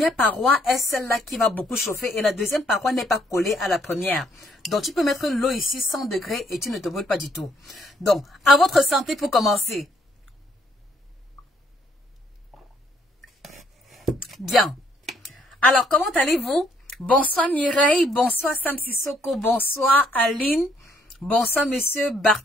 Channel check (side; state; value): both; normal; correlation 0.68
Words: paroi est celle-là qui va beaucoup chauffer et la deuxième paroi n'est pas collée à la première. Donc tu peux mettre l'eau ici 100 degrés et tu ne te brûles pas du tout. Donc, à votre santé pour commencer. Bien. Alors, comment allez-vous? Bonsoir Mireille, bonsoir Sam Sissoko, bonsoir Aline, bonsoir Monsieur